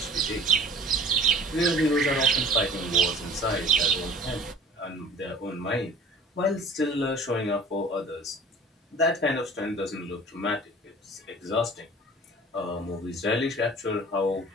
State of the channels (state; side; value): normal; both; correlation 0.44